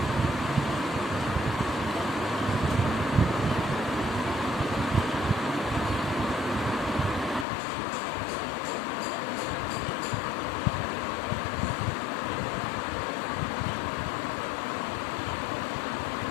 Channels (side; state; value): right; drops out; at 7.5 s